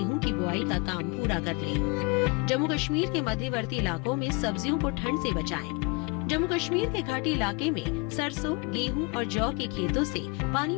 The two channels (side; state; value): right; quieter; 28.1 dB